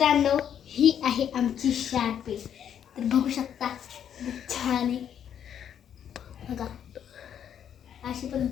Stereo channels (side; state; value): right; quieter; 9.1 dB